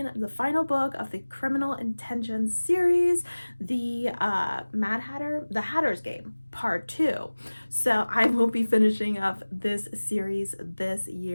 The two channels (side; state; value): both; inverted; correlation -1.00